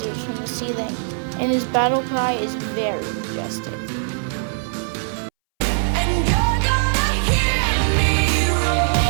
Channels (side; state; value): left; silent; 63 dB below the other